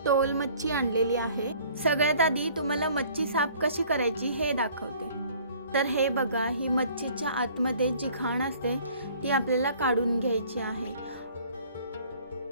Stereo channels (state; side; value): inverted; both; correlation -0.54